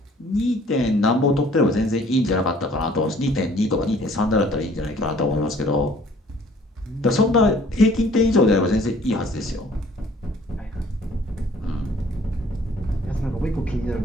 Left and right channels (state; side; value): normal; both; correlation 0.56